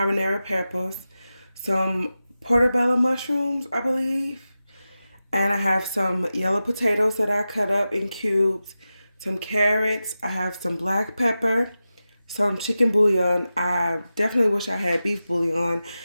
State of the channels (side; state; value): both; inverted; correlation -0.93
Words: peppers. Some portobello mushrooms, I believe. And I have some yellow potatoes that I cut up in cubes, some carrots. I have some black pepper, some chicken bouillon. I definitely wish I had beef bouillon,